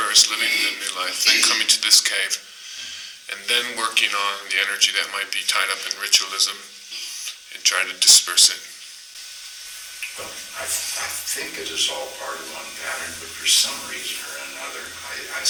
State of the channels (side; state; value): both; identical; correlation 1.00